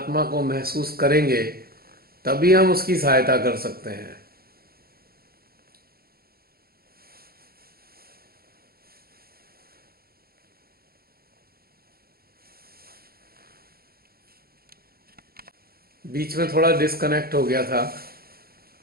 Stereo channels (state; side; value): late; left; 0.44 ms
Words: को महसूस करेंगे, तभी हम उसकी सहायता कर सकते हैं। बीच में थोड़ा डिस्कनेक्ट हो गया था।